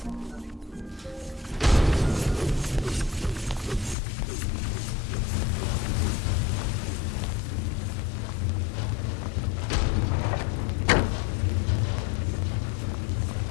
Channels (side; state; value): right; drops out; at 4.0 s